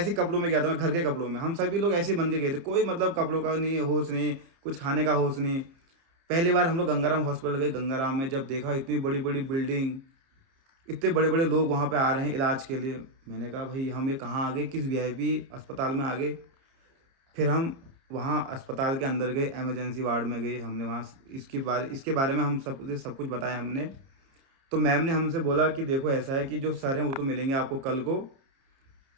कपड़ों में गया था, मैं घर के कपड़ों में। हम सभी लोग ऐसे बन के गए थे, कोई मतलब कपड़ों का नहीं, होश नहीं, कुछ खाने का होश नहीं। पहली बार हम लोग गंगाराम हॉस्पिटल गए। गंगाराम में जब देखा इतनी बड़ी बड़ी बिल्डिंग, इतने बड़े बड़े लोग वहाँ पे आ रहे हैं इलाज के लिए, मैंने कहा भाई हम ये कहाँ आ गए, किस वीआईपी अस्पताल में आ गए। फिर हम वहाँ अस्पताल के अंदर गए, एमरजेंसी वार्ड में गए। हमने वहाँ इसके बारे में हम सब कुछ बताया हमने। तो मैम ने हमसे बोला कि देखो ऐसा है कि जो सर हैं वो तो मिलेंगे आपको कल को,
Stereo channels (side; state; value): left; late; 30 ms